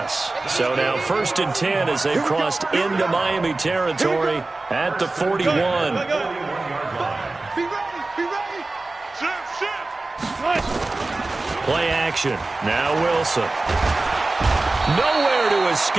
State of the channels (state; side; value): quieter; left; 3.2 dB